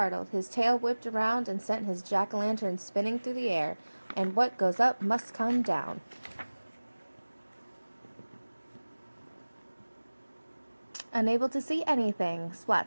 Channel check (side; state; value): both; inverted; correlation -1.00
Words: his tail whipped around and sent his jack-o'-lantern spinning through the air. And what goes up must come down. Unable to see anything,